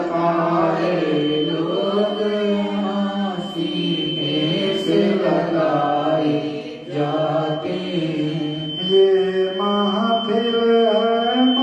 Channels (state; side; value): identical; both; correlation 1.00